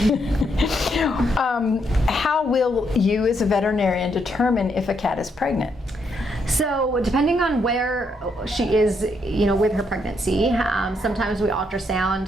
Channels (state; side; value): normal; both; correlation 0.76